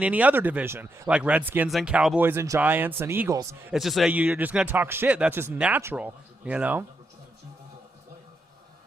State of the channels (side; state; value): both; normal; correlation 0.82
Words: any other division, like Redskins and Cowboys and Giants and Eagles. It's just you're just going to talk shit. That's just natural,